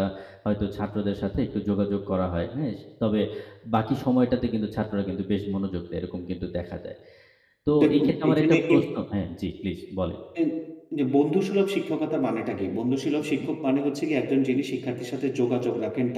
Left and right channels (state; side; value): identical; both; correlation 1.00